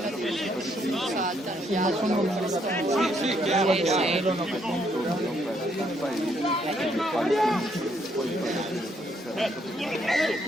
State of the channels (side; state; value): both; normal; correlation 0.72